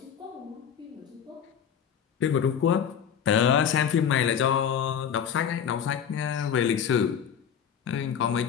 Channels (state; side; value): quieter; right; 8.1 dB